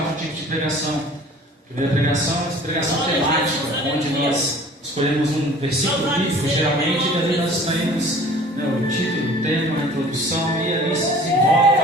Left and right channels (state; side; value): normal; both; correlation 0.48